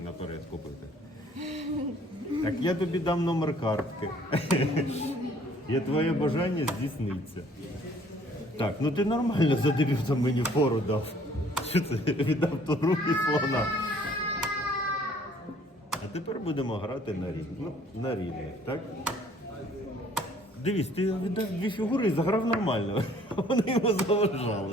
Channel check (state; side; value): normal; both; correlation 0.58